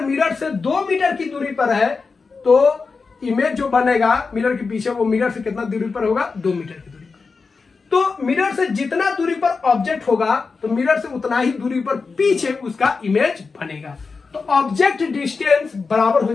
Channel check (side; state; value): right; quieter; 4.6 dB